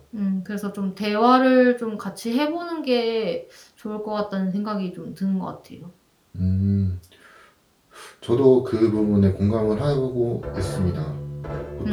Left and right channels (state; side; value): identical; both; correlation 1.00